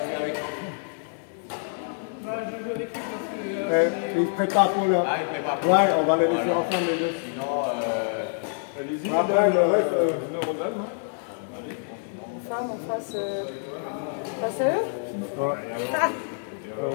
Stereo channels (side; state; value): right; silent; 61 dB below the other